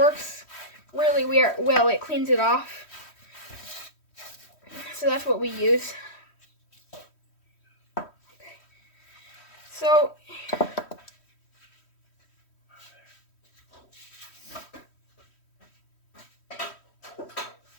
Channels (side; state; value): right; late; 3.1 ms